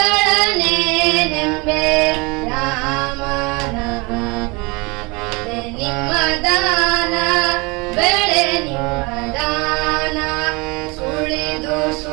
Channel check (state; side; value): quieter; left; 27.4 dB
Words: ರಾಮನ ನಿಮ್ಮ ದಾನ ಬೆಳೆ ನಿಮ್ಮ ದಾನ ಸುಳಿದು